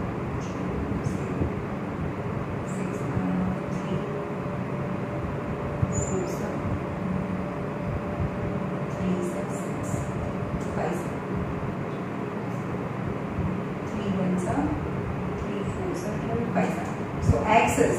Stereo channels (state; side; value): identical; both; correlation 1.00